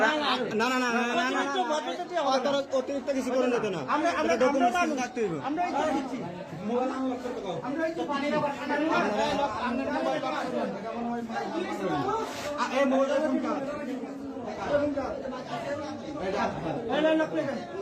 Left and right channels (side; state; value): both; identical; correlation 1.00